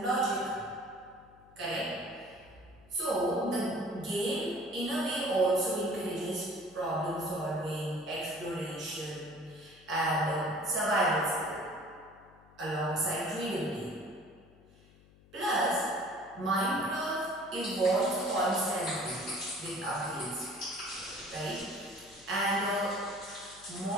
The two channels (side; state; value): left; noise; hum, 25 dB below the sound